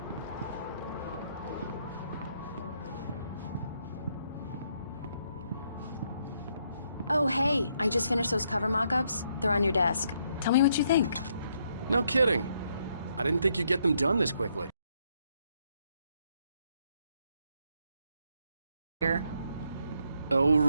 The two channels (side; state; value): both; inverted; correlation -0.74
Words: Oh, hey, I just finished those cover mock-ups. They're on your desk. Tell me what you think. No kidding. I didn't think you'd get them done this quickly. Here. Oh,